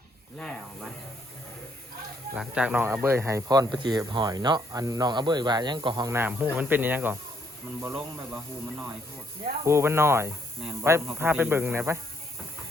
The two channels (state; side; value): normal; both; correlation 0.71